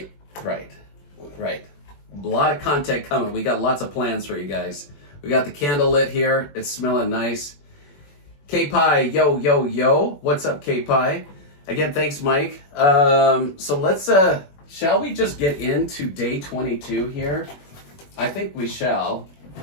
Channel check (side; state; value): right; late; 21 ms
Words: A lot of content coming. We got lots of plans for you guys. We got the candle lit here. It's smelling nice. K-Pie, yo. What's up, K-Pie? Again, thanks, Mike. So let's, shall we just get into day 22 here? I think we shall.